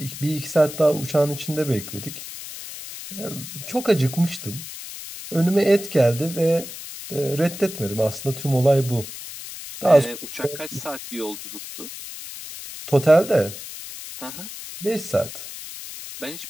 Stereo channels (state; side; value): noise; left; hiss, 11 dB below the sound